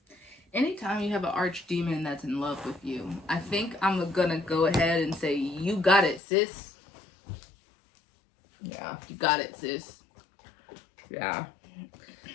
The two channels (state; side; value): drops out; right; at 6.2 s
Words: Anytime you have an archdemon that's in love with you, I think I'm gonna go ahead and say, you got it, sis. Yeah. You got it, sis. Yeah.